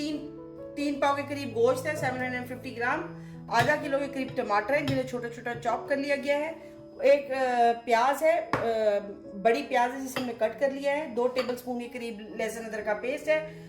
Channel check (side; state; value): both; identical; correlation 1.00